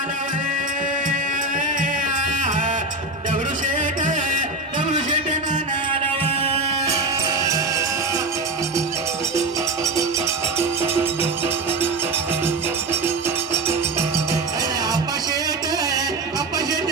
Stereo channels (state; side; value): quieter; left; 3.1 dB